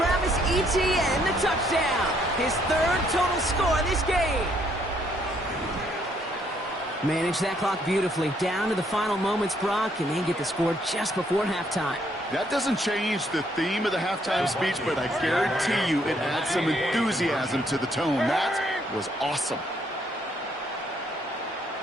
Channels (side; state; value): both; normal; correlation 0.69